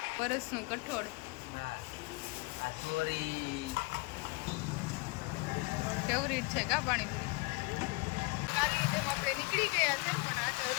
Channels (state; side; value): quieter; right; 26.6 dB